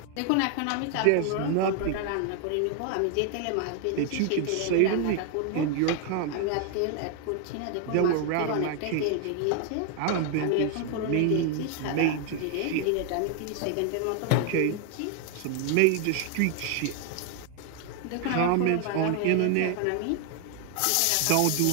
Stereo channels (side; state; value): both; different; correlation 0.00